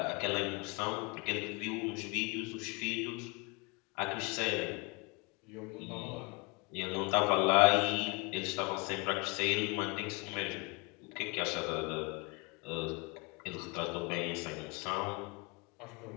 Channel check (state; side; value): quieter; right; 29.2 dB